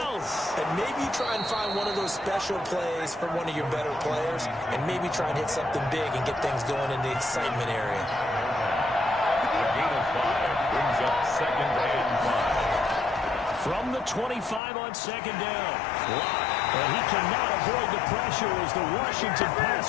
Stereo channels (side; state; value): right; drops out; at 14.6 s